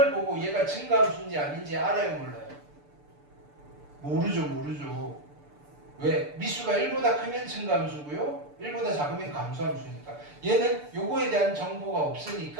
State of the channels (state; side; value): late; left; 6.8 ms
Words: 보고 얘가 증가함수인지 아닌지 알아요, 몰라요? 모르죠. 왜? 미수가 1보다 크면 증가함수고요, 1보다 작으면 감소함수니까. 얘는 요거에 대한 정보가